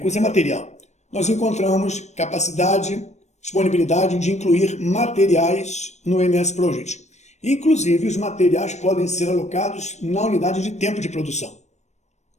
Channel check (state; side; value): late; right; 0.33 ms